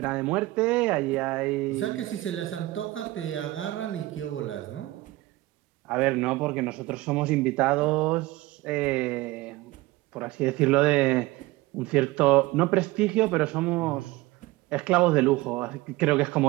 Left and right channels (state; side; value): quieter; left; 19.1 dB